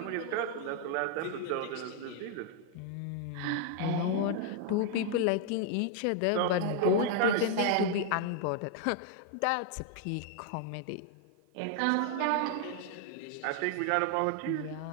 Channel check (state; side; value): different; both; correlation 0.00